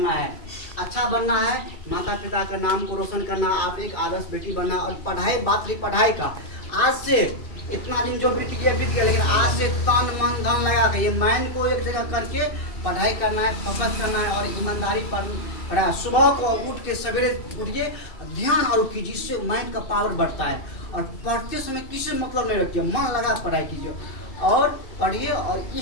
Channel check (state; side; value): late; right; 2.6 ms